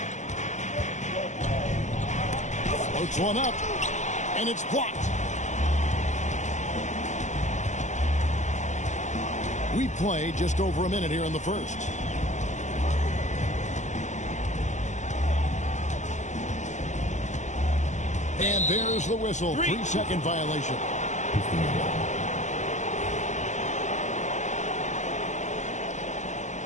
Floats one up, and it's blocked. We play just over a minute here in the first. And there's the whistle. 3-second violation.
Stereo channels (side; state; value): right; late; 0.34 ms